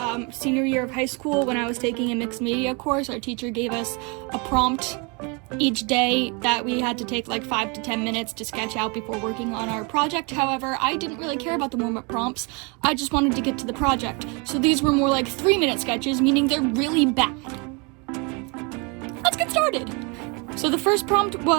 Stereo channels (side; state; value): left; quieter; 31.3 dB